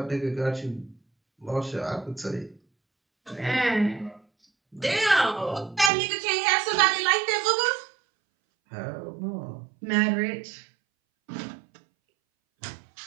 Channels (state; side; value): drops out; left; at 5.9 s